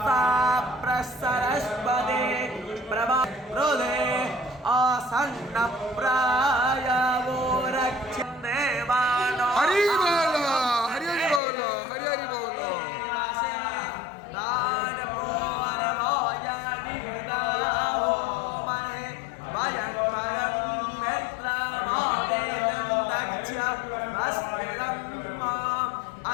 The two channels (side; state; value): right; drops out; at 11.4 s